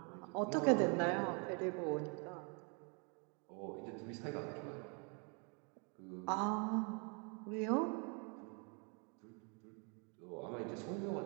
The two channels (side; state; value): left; quieter; 36.0 dB